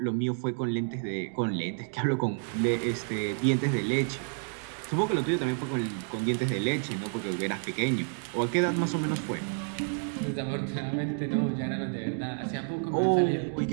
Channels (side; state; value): left; silent; 58 dB below the other